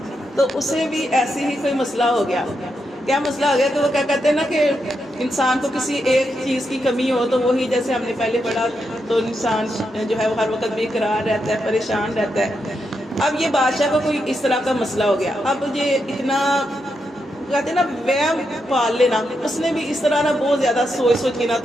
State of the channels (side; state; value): both; normal; correlation 0.84